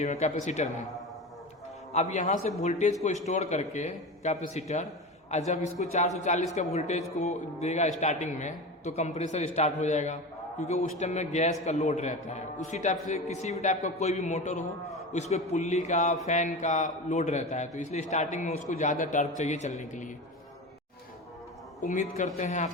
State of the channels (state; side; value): normal; both; correlation 0.27